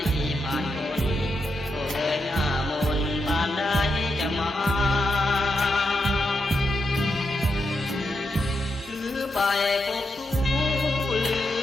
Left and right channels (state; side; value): normal; both; correlation 0.84